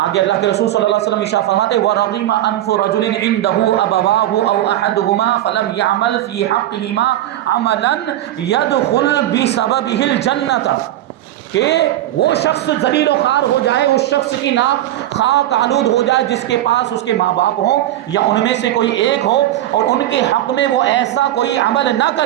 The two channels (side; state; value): left; quieter; 13.5 dB